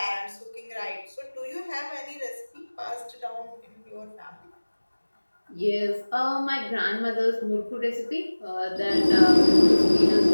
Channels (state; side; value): inverted; both; correlation -1.00